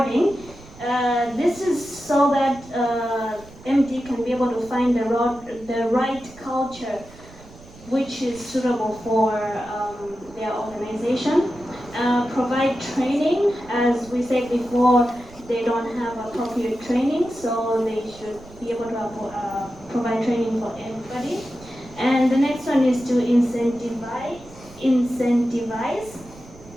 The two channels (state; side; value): noise; right; rumble, 21 dB below the sound